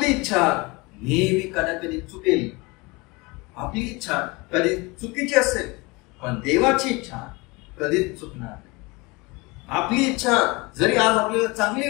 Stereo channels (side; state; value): right; quieter; 25.4 dB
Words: इच्छा नेहमी कधी चुकेल. आपली इच्छा कधी चुकीची असेल, पण देवाची इच्छा कधीच चुकणार नाही. आपली इच्छा जरी आज आपल्याला चांगली